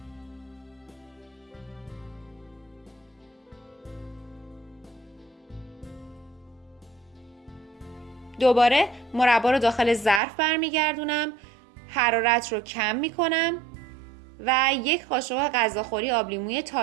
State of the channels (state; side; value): drops out; left; at 10.2 s